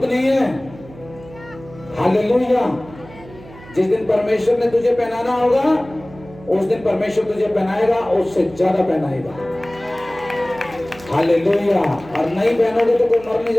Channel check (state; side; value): noise; right; hum, 20 dB below the sound